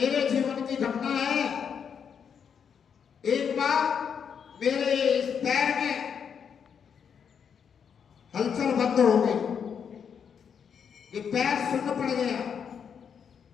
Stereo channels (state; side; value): quieter; right; 7.2 dB